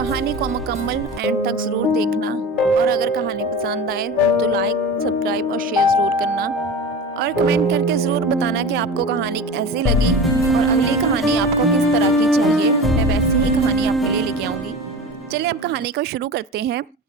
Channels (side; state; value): both; normal; correlation 0.31